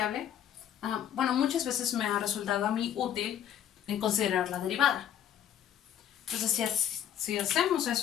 bueno, muchas veces me ha resultado a mí útil en considerar la derivada. Entonces, si hacemos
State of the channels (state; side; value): quieter; right; 10.0 dB